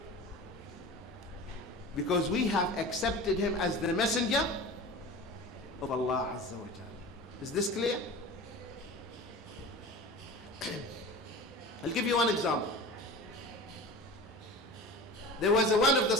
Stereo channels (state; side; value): normal; both; correlation 0.35